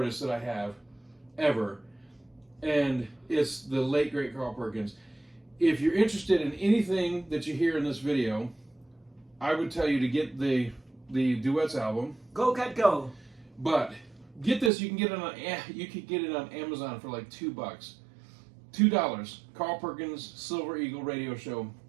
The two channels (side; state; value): left; drops out; at 14.7 s